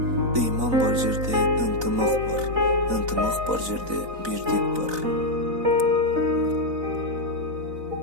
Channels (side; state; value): left; late; 4.0 ms